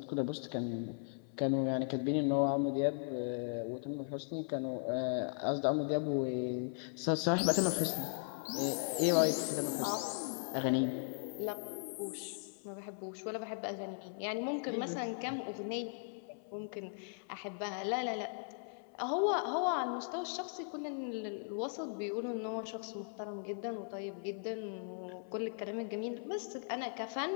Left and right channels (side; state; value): right; silent; 53 dB below the other